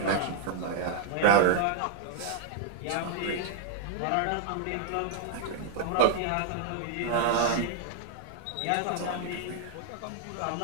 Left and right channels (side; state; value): both; different; correlation -0.01